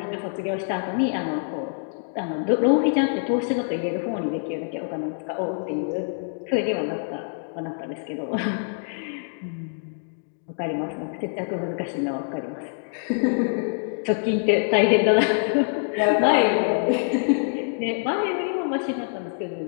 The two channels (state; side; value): silent; right; digital silence